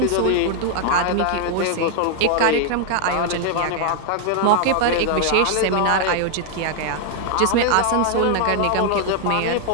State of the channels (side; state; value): both; different; correlation 0.00